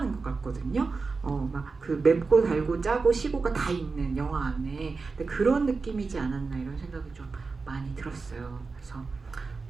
것 같거든요. 막 그 맵고 달고 짜고 시고가 다 있는 영화 안에 근데 그런 느낌이지 않았나 이런 생각이 좀 많이 들었어요. 그래서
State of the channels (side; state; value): left; quieter; 4.3 dB